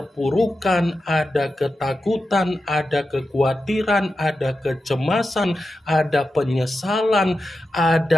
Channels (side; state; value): both; normal; correlation 0.90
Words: ada ketakutan, ada kekhawatiran, ada kecemasan, ada penyesalan,